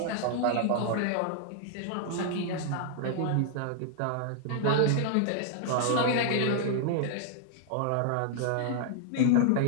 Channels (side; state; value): both; different; correlation 0.00